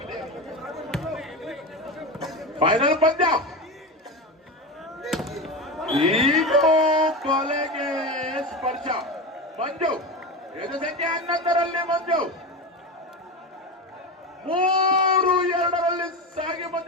ಫೈನಲ್ ಪಂದ್ಯ. ಈಗ ಕೊಲೆಗೆ ಸ್ಪರ್ಶ. ಮಂಜು ಎದು ಸಂಖ್ಯೆ 11ರಲ್ಲಿ ಮಂಜು 3-2ರಲ್ಲಿ ಸಾಗಿ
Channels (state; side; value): normal; both; correlation 0.21